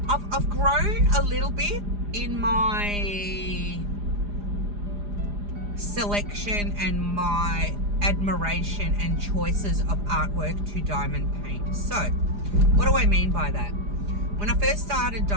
grown a little bit in my selection and my admiration and choices of artwork to diamond paint. So, what do I mean by that? When I first started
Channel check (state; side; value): late; left; 4.9 ms